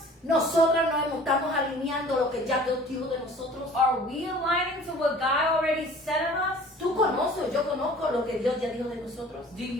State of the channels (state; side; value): normal; both; correlation 0.48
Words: Nosotros no estamos alineando lo que ya Dios dijo de nosotros. Are we aligning to what God already said of us? Tú conoces, yo conozco lo que Dios ya dijo de nosotros. Do